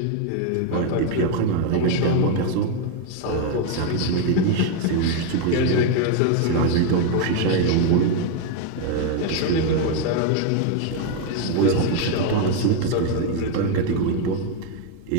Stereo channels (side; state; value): both; different; correlation 0.01